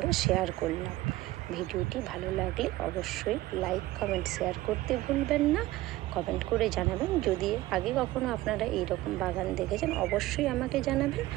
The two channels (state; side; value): quieter; left; 17.2 dB